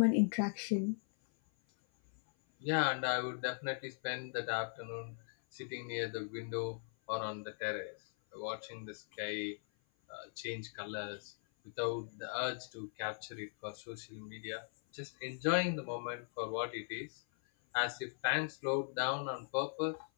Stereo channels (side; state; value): right; silent; 52 dB below the other